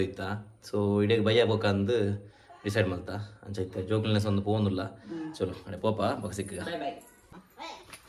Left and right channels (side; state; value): both; identical; correlation 1.00